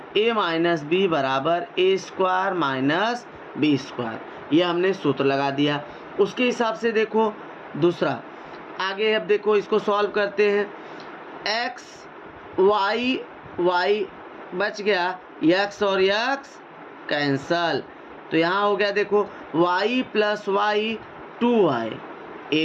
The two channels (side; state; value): both; identical; correlation 1.00